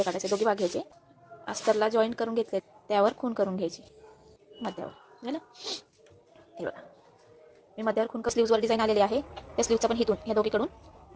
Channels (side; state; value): both; identical; correlation 1.00